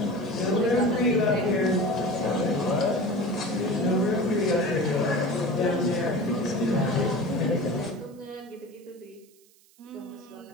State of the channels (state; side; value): noise; right; hiss, 30 dB below the sound